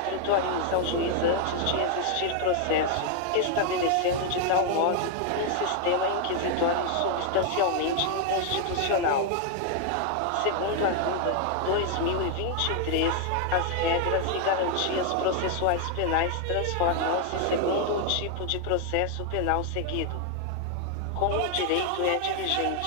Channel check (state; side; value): different; both; correlation 0.00